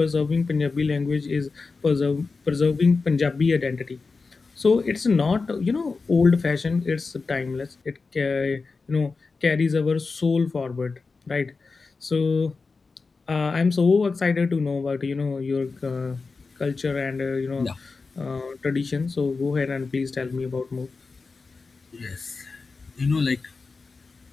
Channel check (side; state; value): right; quieter; 4.3 dB